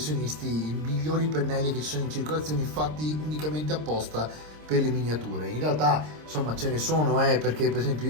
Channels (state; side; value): late; left; 26 ms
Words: i migliori pennelli che ci sono in circolazione, fatti unicamente apposta per le miniature. In realtà insomma ce ne sono, perché per esempio